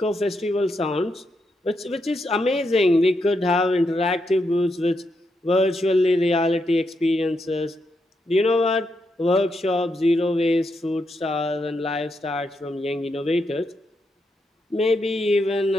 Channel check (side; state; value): both; normal; correlation 0.82